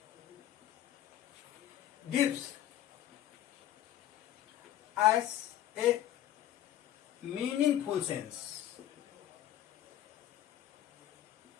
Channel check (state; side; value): quieter; right; 12.2 dB